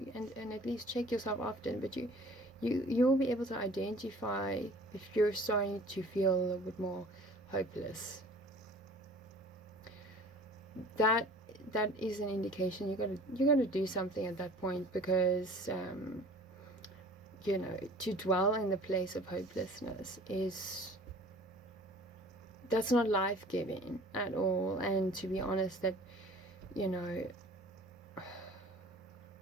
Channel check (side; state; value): both; normal; correlation 0.47